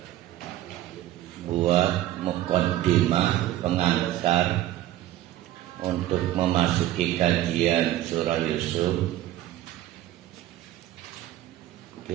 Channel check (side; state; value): left; quieter; 14.0 dB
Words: buat muqaddimah pengantar untuk memasuki kajian surah Yusuf,